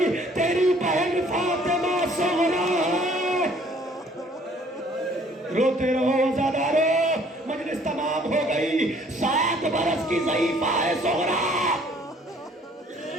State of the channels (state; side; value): normal; both; correlation 0.58